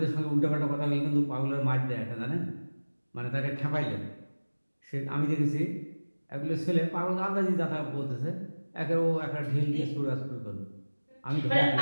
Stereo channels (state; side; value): inverted; both; correlation -1.00